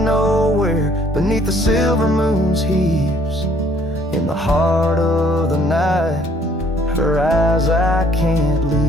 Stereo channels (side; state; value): both; normal; correlation 0.62